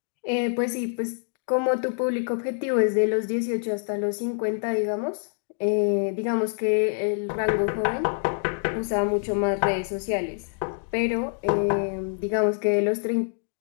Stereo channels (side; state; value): right; silent; digital silence